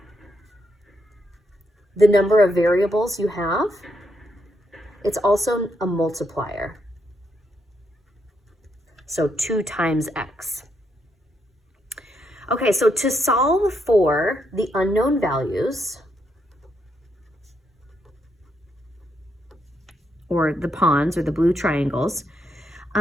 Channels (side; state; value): both; normal; correlation 0.78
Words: the number of variables you have. It's also a multiplier. So 2 times x. Okay, so to solve for the unknown values, or the pawns or the blue triangles,